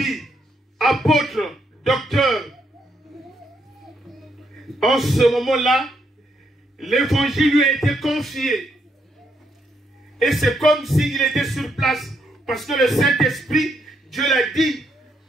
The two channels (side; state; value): both; normal; correlation 0.76